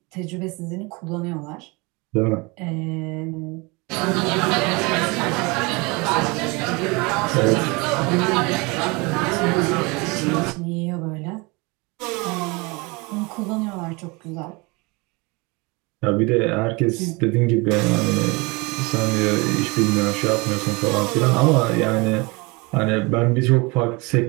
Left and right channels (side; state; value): left; quieter; 26.7 dB